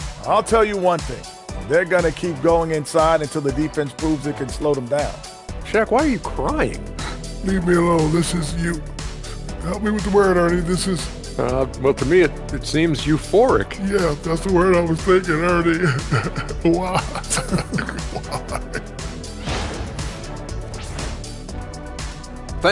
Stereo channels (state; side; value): identical; both; correlation 1.00